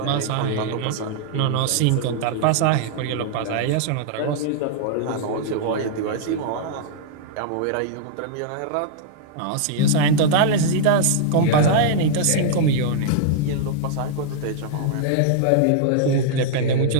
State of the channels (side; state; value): both; different; correlation -0.01